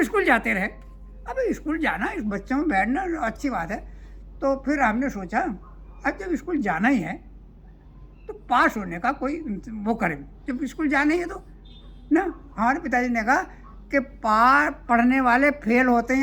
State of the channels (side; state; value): both; identical; correlation 1.00